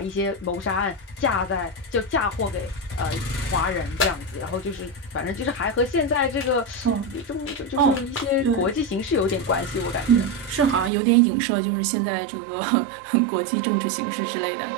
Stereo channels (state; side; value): drops out; left; at 10.9 s